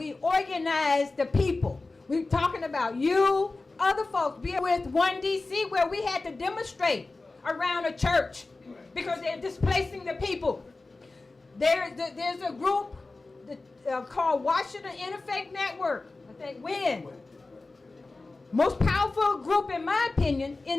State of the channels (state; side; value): quieter; right; 3.4 dB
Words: organize the people. We're talking about you, other folks, be with One DC, where we had to demonstrate around a church because they're displacing the people. There's a group called Washington Interfaith Network, I think WIN. Most powerful group, in my opinion,